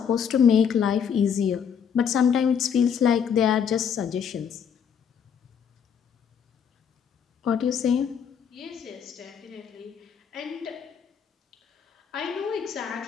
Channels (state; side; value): quieter; right; 7.5 dB